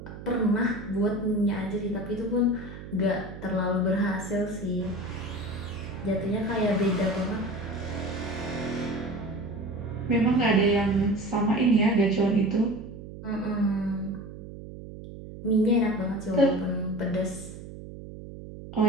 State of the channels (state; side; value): noise; right; hum, 13 dB below the sound